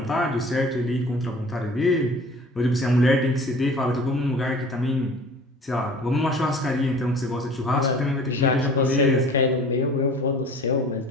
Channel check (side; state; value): both; normal; correlation 0.45